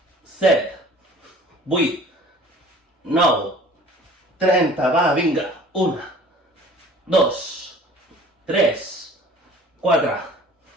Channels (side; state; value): both; normal; correlation 0.48